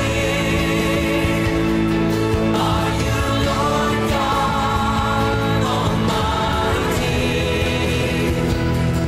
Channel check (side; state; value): both; identical; correlation 1.00